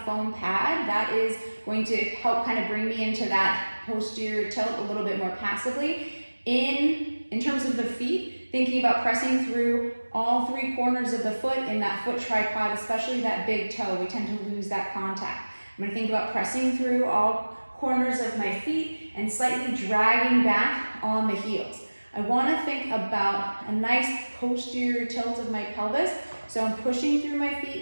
foam pad. That is going to help kind of bring me into that posterior tilt a little bit more passively. In terms of the feet, thinking about pressing through all three corners of the foot in that foot tripod, especially that big toe. We tend to lose that contact. I'm going to think about pressing through all corners of my feet and slightly dragging back on the heels. I want to think about a nice posterior tilt of my pelvis. So I'm pushing through my feet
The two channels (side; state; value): both; inverted; correlation -1.00